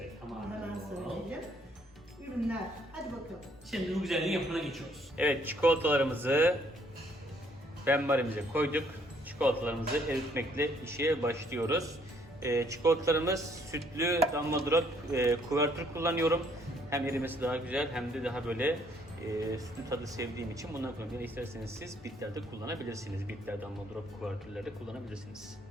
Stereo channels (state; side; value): normal; both; correlation 0.66